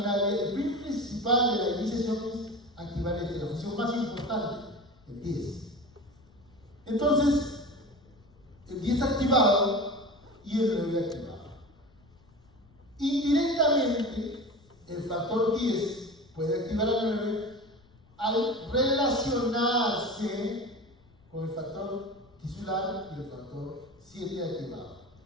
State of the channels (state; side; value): noise; left; rumble, 28 dB below the sound